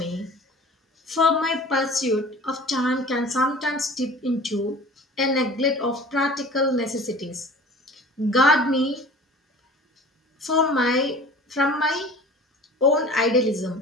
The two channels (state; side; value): normal; both; correlation 0.42